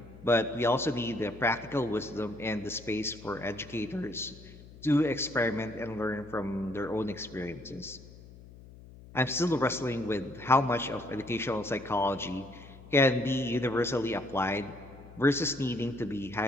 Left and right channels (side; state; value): left; noise; hum, 19 dB below the sound